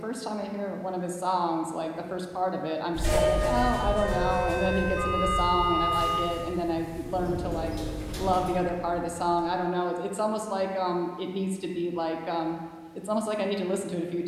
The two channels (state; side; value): identical; both; correlation 1.00